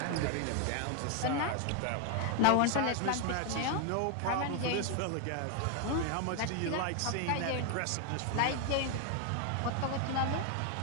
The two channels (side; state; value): both; different; correlation 0.01